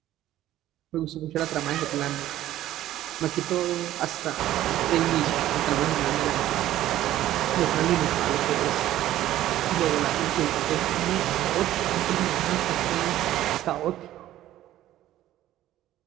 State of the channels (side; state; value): left; quieter; 13.6 dB